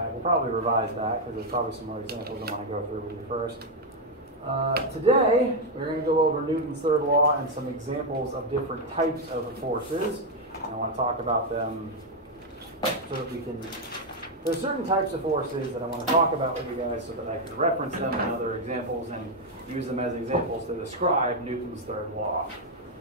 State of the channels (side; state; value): both; normal; correlation 0.02